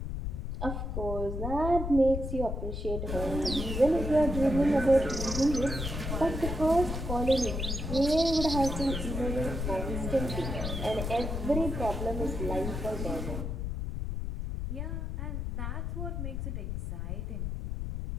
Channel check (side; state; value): left; noise; rumble, 3 dB below the sound